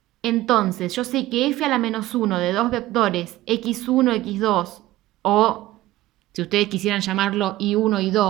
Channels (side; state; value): left; quieter; 16.3 dB